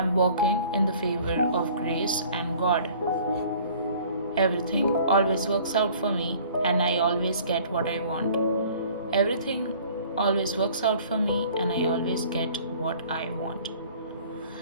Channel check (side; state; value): both; inverted; correlation -0.51